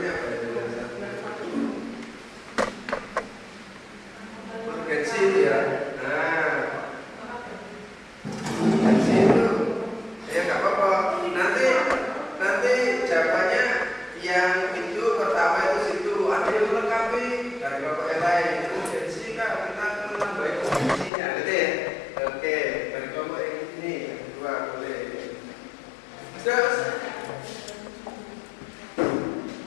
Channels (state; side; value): drops out; right; at 21.1 s